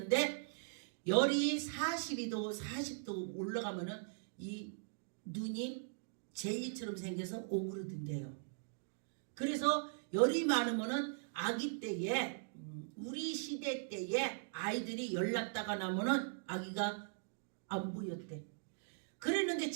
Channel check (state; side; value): silent; left; digital silence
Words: 열이 42도 40도 올라가면은 이 눈이 젤리처럼 생겨서 오그러든대요. 그래서 열이 많으면은 아기 때에 우리 시대 때에 아이들이 열 났다가 나면은 아기가 안 보였대. 그랬는데